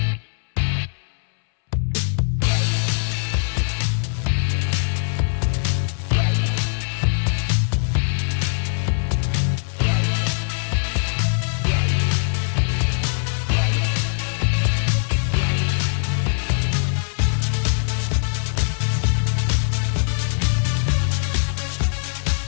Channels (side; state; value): right; silent; 65 dB below the other